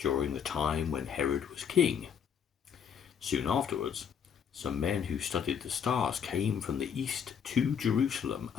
the time when Herod was king. Soon afterwards, some men who studied the stars came from the east to Jerusalem,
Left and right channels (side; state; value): right; quieter; 7.6 dB